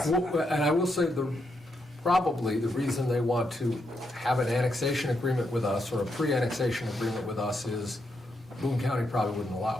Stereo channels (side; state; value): both; normal; correlation 0.81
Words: Well, and I will say probably the reason they want to have an annexation agreement with us, or a pre-annexation agreement with us, is Boone County probably wouldn't